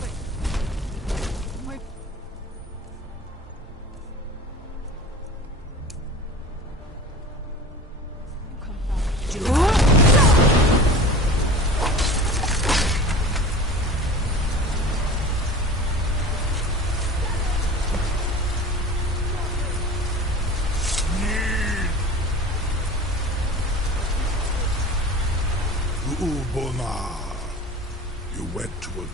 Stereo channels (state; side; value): normal; both; correlation 0.38